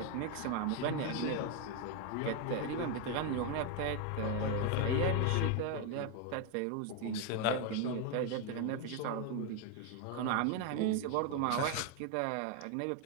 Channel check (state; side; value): different; both; correlation 0.01